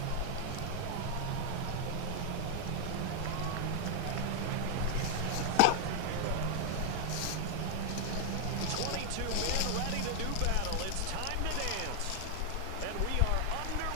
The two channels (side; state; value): both; different; correlation 0.00